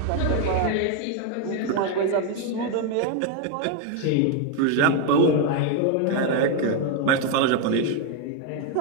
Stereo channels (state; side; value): different; both; correlation 0.01